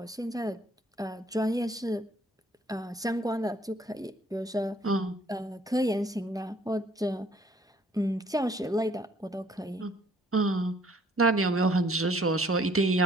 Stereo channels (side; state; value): both; normal; correlation 0.60